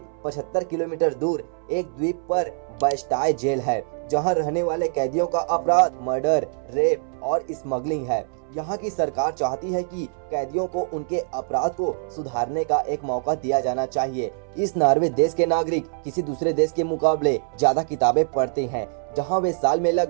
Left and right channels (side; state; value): left; silent; 62 dB below the other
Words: 75 किलोमीटर दूर एक द्वीप पर बास्टाय जेल है, जहां रहने वाले कैदियों का अपराध मर्डर, रेप और स्मगलिंग है। यहाँ की सरकार चाहती है कि कैदियों को उनके अपराध को सुधारने का एक मौका दिया जाना चाहिए। इस नॉर्वे देश के नागरिक किसी दूसरे देश के मुकाबले ज्यादा किताबें पढ़ते हैं, जहाँ वे साल में